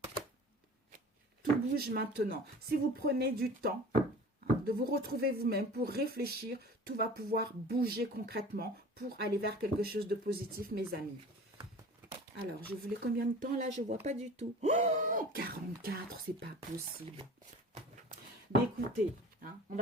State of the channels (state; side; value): normal; both; correlation 0.42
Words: tout bouge maintenant. Si vous prenez du temps de vous retrouver vous-même pour réfléchir, tout va pouvoir bouger concrètement pour aller vers quelque chose de positif, mes amis. Alors, je voulais combien de temps là? Je ne vois pas du tout. Oh, 44, c'est pas possible. Mais écoutez, Hein, on